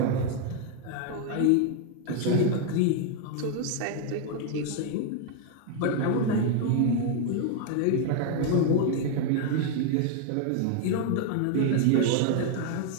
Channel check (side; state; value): both; different; correlation 0.00